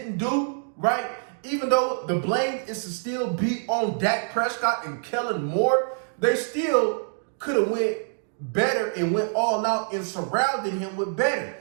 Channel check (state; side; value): silent; left; 61 dB below the other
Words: do, right, even though the blame is to still be on Dak Prescott and Kellen Moore, they still could have went better and went all out and surrounded him with better.